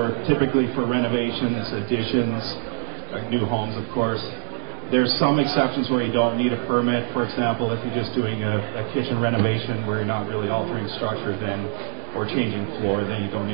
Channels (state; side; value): silent; left; digital silence